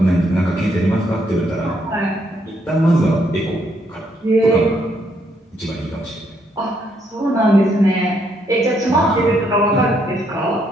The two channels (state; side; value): normal; both; correlation 0.73